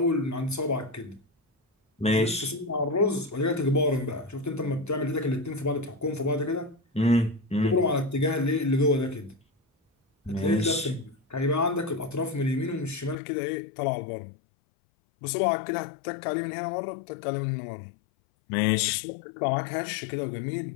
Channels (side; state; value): right; drops out; at 13.2 s